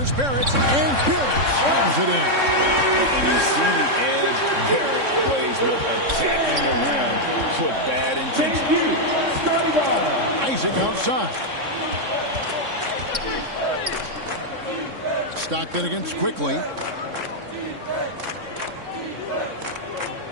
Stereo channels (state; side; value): late; left; 3.6 ms